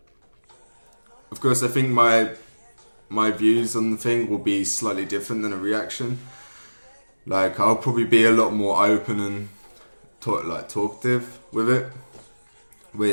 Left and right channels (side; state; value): both; inverted; correlation -1.00